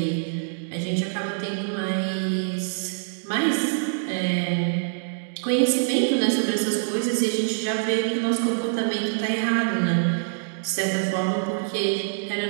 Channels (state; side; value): silent; left; digital silence